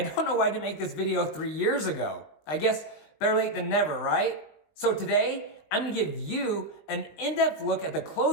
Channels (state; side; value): late; right; 20 ms